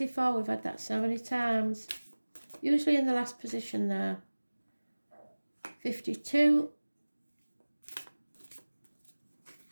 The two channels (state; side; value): inverted; both; correlation -1.00